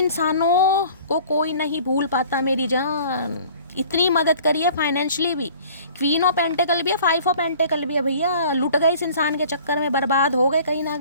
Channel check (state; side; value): inverted; both; correlation -0.49